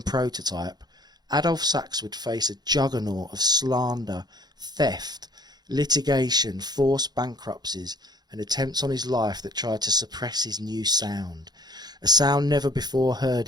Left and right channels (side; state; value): left; late; 0.20 ms